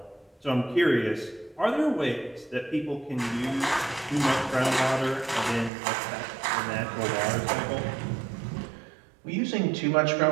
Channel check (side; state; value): left; drops out; at 5.7 s